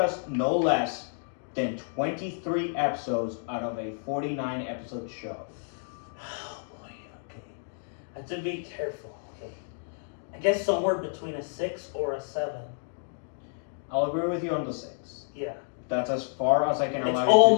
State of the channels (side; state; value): right; silent; digital silence